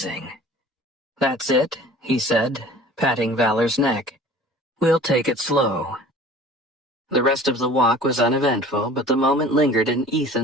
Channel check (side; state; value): both; normal; correlation 0.45